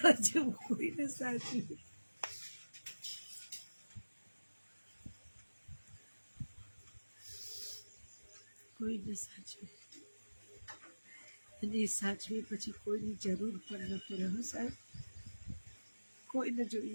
જેવું કોઈને સાચવી. કોઈને સાચવી, અને એ સાચવી પછી કોઈની જરૂર પણ ન પડે. હો સાહેબ, કોઈને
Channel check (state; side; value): inverted; both; correlation -1.00